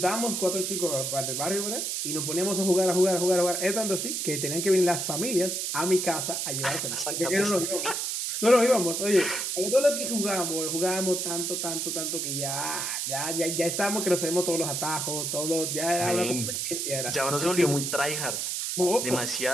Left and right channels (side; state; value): right; noise; hiss, 1 dB below the sound